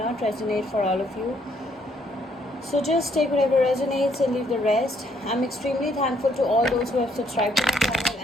resonate for all of you. So just take whatever resonates and leave the rest. I'm extremely thankful to all those who have subscribed to my channel,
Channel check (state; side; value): normal; both; correlation 0.69